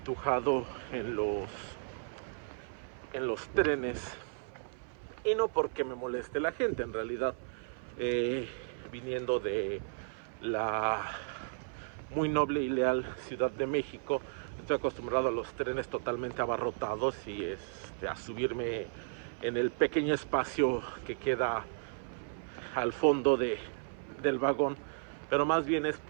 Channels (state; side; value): silent; left; 55 dB below the other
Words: en los trenes. Y no porque me moleste la gente, en realidad viniendo de la muy noble y leal Ciudad de México, estoy acostumbrado a los trenes totalmente abarrotados y a subirme en el pequeño espacio que queda al fondo del vagón, pero más bien es